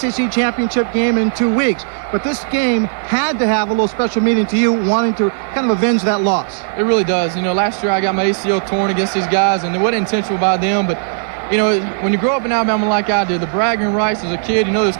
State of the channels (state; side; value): silent; left; digital silence